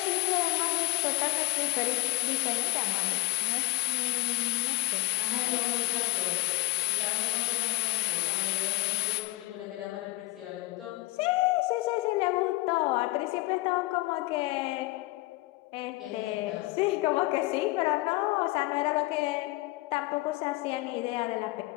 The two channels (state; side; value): quieter; right; 21.4 dB